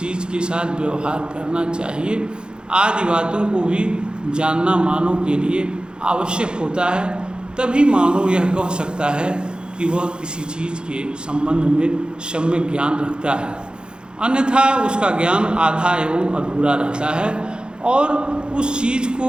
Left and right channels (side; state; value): left; late; 0.049 ms